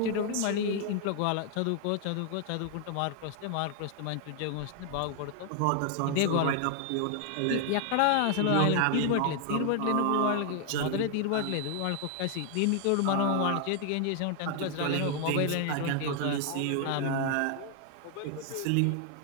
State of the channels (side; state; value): both; different; correlation 0.00